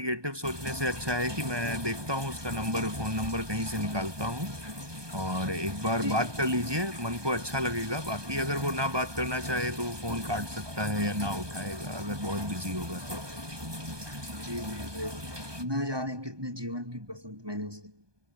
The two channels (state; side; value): late; left; 1.2 ms